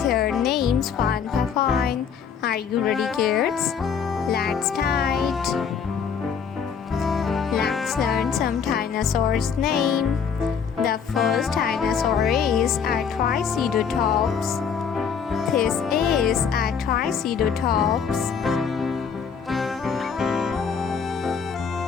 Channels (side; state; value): right; quieter; 6.7 dB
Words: names one by one. Are you ready, kids? Let's start. Let's learn some dinosaurs' name. The first dinosaur is a triceratops. This is a triceratops.